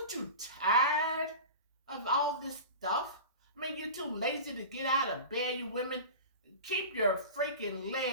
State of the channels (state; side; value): inverted; both; correlation -0.32